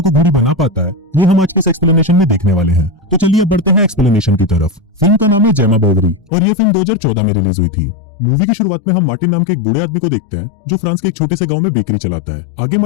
घोड़ी बना पाता है, ये हम आज के इस एक्सप्लेनेशन में देखने वाले हैं। तो चलिए अब बढ़ते हैं एक्सप्लेनेशन की तरफ। फिल्म का नाम है जेमा बोवरी और ये फिल्म 2014 में रिलीज हुई थी। मूवी की शुरुआत में हम मार्टिन नाम के एक बूढ़े आदमी को देखते हैं जो फ्रांस के एक छोटे से गांव में बेकरी चलाता है। आगे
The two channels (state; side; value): drops out; right; at 6.3 s